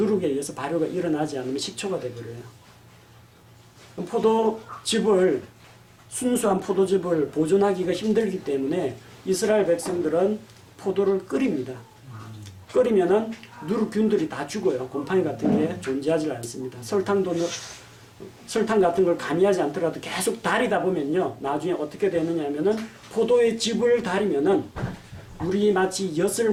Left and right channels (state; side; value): identical; both; correlation 1.00